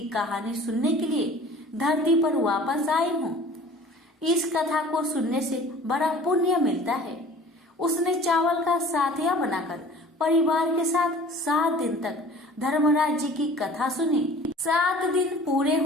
कहानी सुनने के लिए धरती पर वापस आई हूँ। इस कथा को सुनने से बड़ा पुण्य मिलता है। उसने चावल का साथिया बनाकर परिवार के साथ 7 दिन तक धर्मराज जी की कथा सुनी। 7 दिन पूरे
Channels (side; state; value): both; normal; correlation 0.46